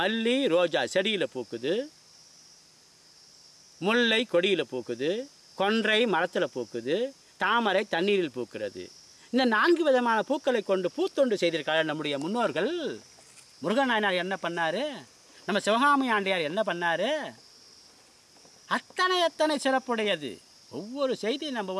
ரோஜா செடியில் பூக்குது, முல்லை கொடியில் பூக்குது, கொன்றை மரத்தில் பூக்குது, தாமரை தண்ணீரில் பூக்கிறது. இந்த 4 விதமான பூக்களை கொண்டு பூத்தொண்டு செய்திருக்காரு நம்முடைய முன்னோர்கள். முருகன் நாயனார் என்ன பண்ணார்? நம்ம சிவகாமி ஆண்டியார் என்ன பண்ணார்? எத்தனை சிறப்புடையது. ஒவ்வொரு செய்தியும் நம்ம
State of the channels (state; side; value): identical; both; correlation 1.00